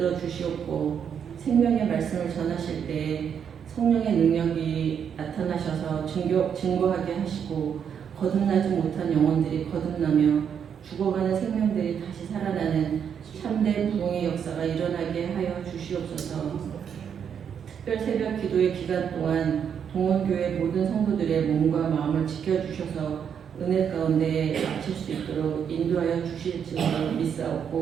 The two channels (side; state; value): left; quieter; 7.8 dB